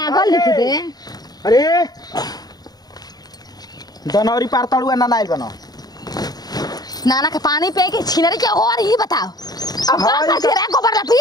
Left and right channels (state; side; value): late; right; 0.19 ms